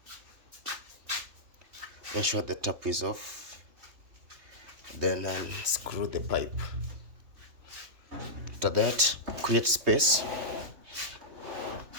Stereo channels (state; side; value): late; left; 3.0 ms